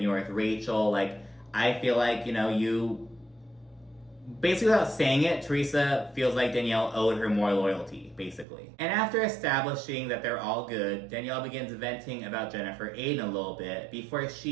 you are with Rachel. Like, I feel like, you... Basically, without saying it, Teresa feels like Danielle owed her more loyalty, basically. And after establishing that they're all good, Danielle begins venting about Jennifer Aydin a little bit before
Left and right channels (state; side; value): drops out; left; at 8.5 s